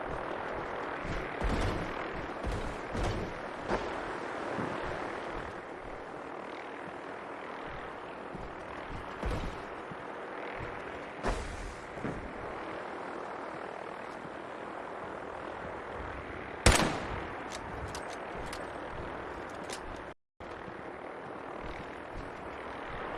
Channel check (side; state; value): both; identical; correlation 1.00